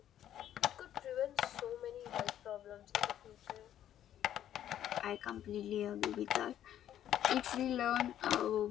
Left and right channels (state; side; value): quieter; right; 11.2 dB